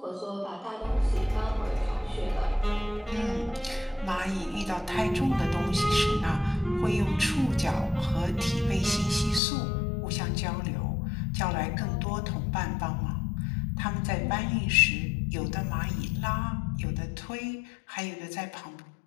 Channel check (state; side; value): drops out; right; at 9.4 s